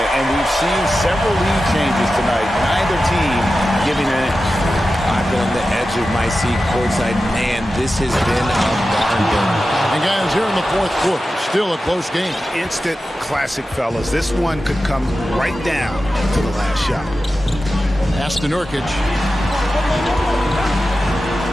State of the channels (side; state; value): both; normal; correlation 0.93